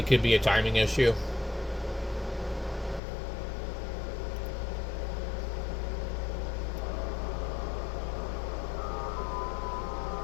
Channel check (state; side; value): drops out; right; at 3.0 s